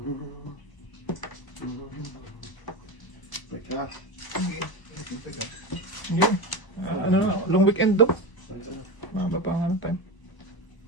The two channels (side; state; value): right; late; 1.0 ms